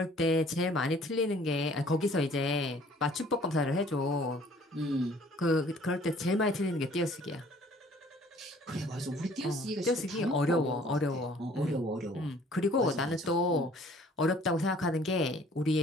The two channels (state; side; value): normal; both; correlation 0.55